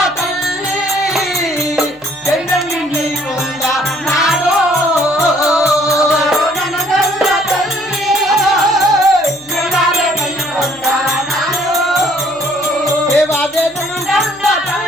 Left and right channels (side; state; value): left; noise; hum, 30 dB below the sound